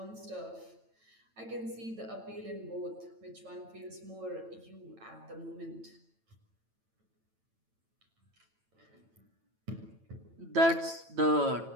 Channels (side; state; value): left; late; 9.0 ms